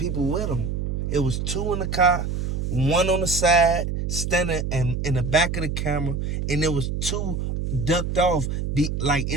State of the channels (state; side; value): noise; right; hum, 2 dB below the sound